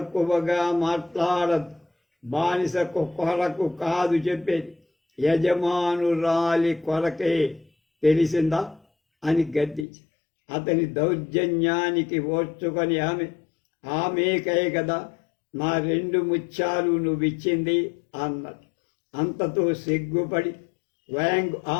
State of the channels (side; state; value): right; drops out; at 9.9 s